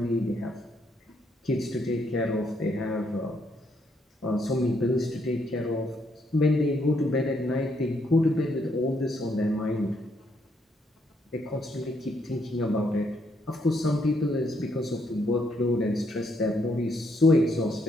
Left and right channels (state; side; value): normal; both; correlation 0.74